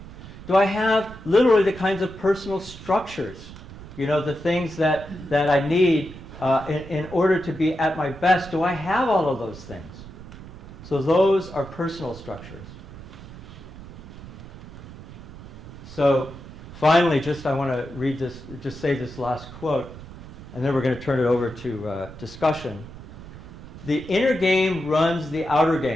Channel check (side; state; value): right; noise; rumble, 15 dB below the sound